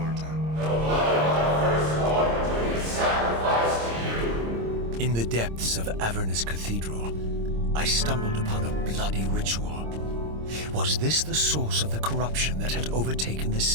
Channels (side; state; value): left; late; 26 ms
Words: The blood of our firstborn do we sacrifice to you. In the depths of Avernus Cathedral, I stumbled upon a bloody ritual. Was this the source of the corruption that had overtaken the